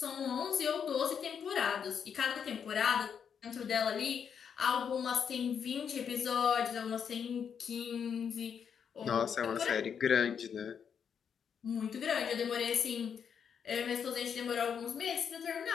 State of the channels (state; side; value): quieter; right; 7.4 dB